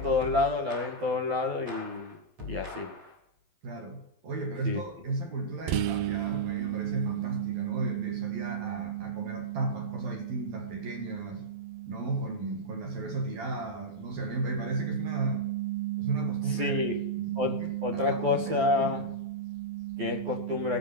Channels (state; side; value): late; left; 12 ms